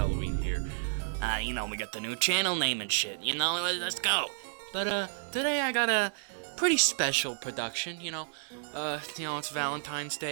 here. You know, we got the new channel name and shit, you know, let's go. But, today I got a pretty special production, you know, it's Valentine's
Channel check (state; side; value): silent; left; digital silence